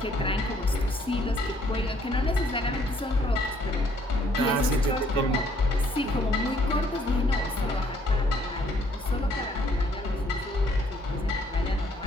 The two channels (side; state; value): both; normal; correlation 0.65